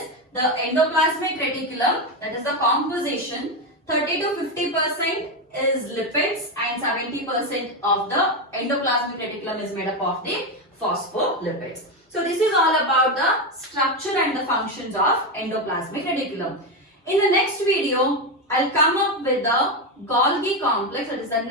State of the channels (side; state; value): both; normal; correlation 0.11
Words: the endoplasmic reticulum, that is the composition, 30 to 50% is lipids and 70% of the endoplasmic reticulum is made up of the phospholipids. So this is all about the structure and the functions of endoplasmic reticulum. In the next video, I'll come up with the Golgi complex, that is the